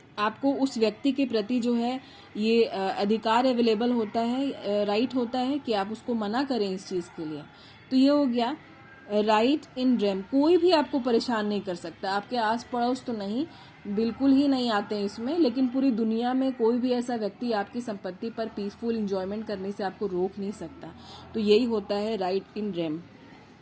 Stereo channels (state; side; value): identical; both; correlation 1.00